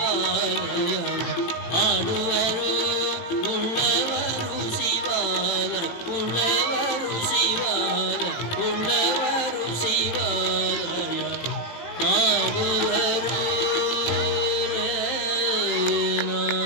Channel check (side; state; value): right; late; 18 ms